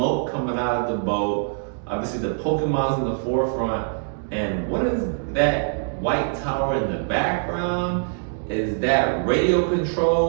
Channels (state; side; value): silent; left; digital silence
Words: coming out of the boat, obviously the Pokemon's in the forefront, and what is that white tower in the background? Is that radio